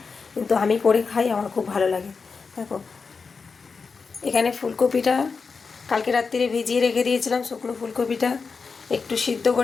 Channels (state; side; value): quieter; right; 5.0 dB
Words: কিন্তু আমি করে খাই, আমার খুব ভালো লাগে। দেখো এখানে ফুলকপিটা কালকে রাত্রিরে ভিজিয়ে রেখে দিয়েছিলাম। শুকনো ফুলকপিটা একটু সিদ্ধ